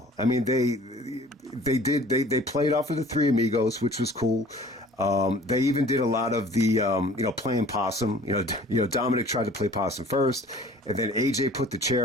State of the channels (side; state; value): both; normal; correlation 0.49